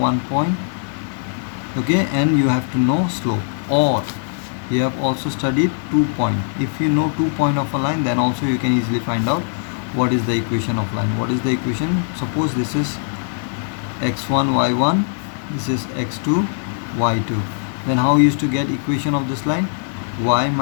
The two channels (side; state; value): right; silent; digital silence